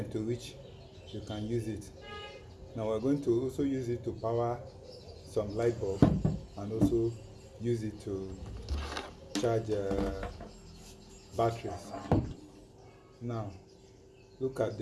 to which you can use it. Now we're going to also use it to power some light bulb and also use it to charge batteries. Now look at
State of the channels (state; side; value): identical; both; correlation 1.00